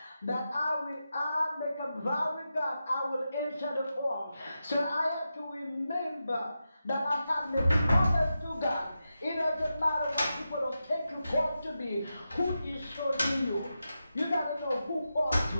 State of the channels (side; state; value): both; inverted; correlation -0.89